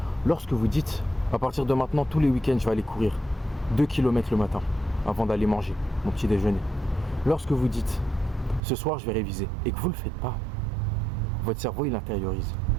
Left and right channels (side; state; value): left; drops out; at 8.6 s